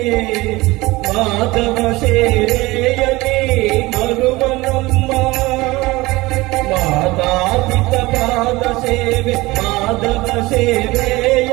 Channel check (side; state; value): left; quieter; 20.8 dB